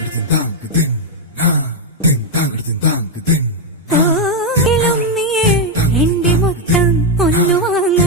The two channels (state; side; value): normal; both; correlation 0.02